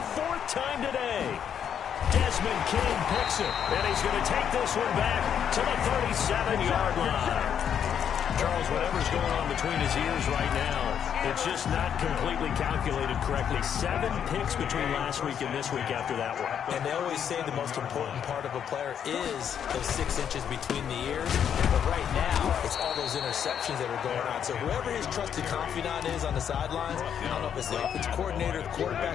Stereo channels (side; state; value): right; quieter; 8.6 dB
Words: 4th time today. Desmond King picks it, and he's going to take this one back to the 37-yard line. Charles, whatever's going on between his ears right now, it's just not completely calculated correctly. 7 picks between last week and this week after that one. And they always say the most important part of a player is those 6 inches between the ears. But right now, it's all those interceptions that are going on. So whoever his trusted confidant is on the sidelines, I don't know if it's the offensive coordinator, the